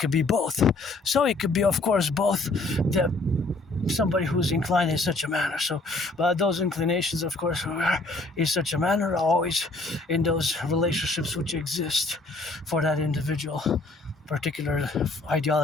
So it could be, of course, both somebody who's inclined in such a manner. So, but those inclinations, of course, in such a manner are always in those relationships which exist for that individual particular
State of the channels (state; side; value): quieter; right; 3.1 dB